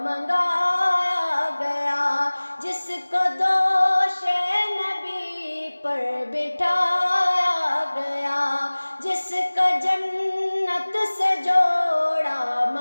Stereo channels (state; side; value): inverted; both; correlation -1.00